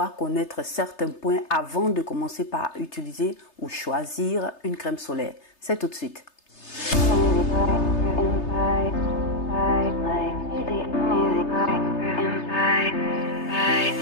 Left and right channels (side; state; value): right; late; 3.3 ms